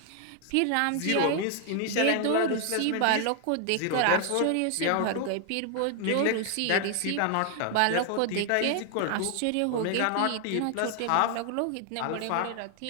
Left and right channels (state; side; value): different; both; correlation 0.00